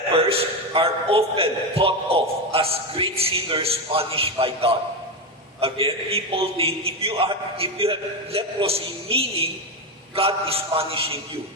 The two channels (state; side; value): normal; both; correlation 0.13